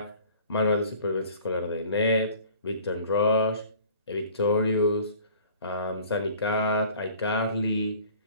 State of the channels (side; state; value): both; inverted; correlation -0.50